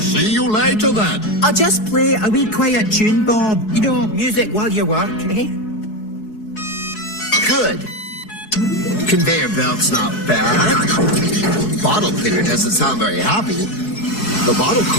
you later, then. I'll just play a wee quiet tune, Bob. You know, music while you work, eh? Good. Conveyor belt's not bad. Bottle cleaner doesn't sound very happy. The bottle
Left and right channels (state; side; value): late; right; 4.7 ms